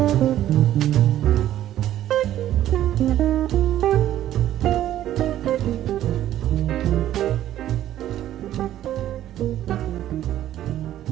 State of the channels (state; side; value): quieter; left; 12.5 dB